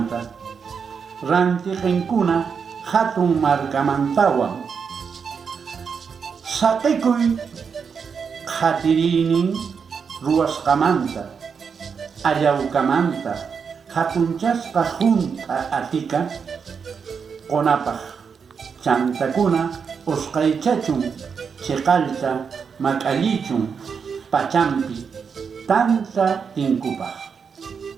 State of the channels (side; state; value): left; quieter; 6.2 dB